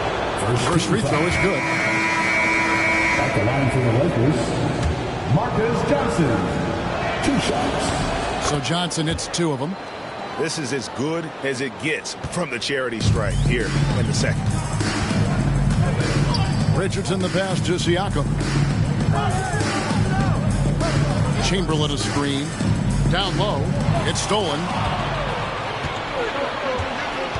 First free throw is good. At the line for the Lakers, Marcus Johnson. 2 shots. So Johnson hits 2 of them. This is as good as it gets from the charity stripe here in the second. Richardson the pass to Siakam. Chamberlain a screen. Down low. It's stolen.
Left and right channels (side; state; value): both; identical; correlation 1.00